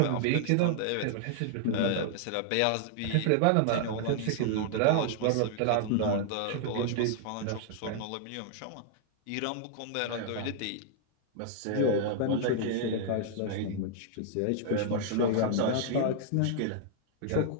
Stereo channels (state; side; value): different; both; correlation -0.01